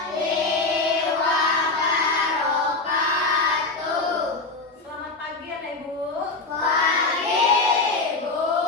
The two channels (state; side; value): quieter; right; 3.6 dB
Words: wabarakatuh. Selamat pagi anak ibu. Pagi, Bu.